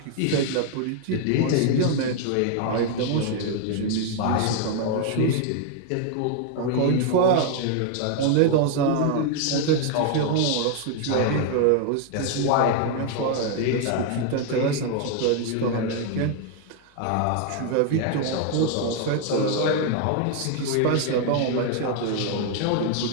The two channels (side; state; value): both; different; correlation 0.00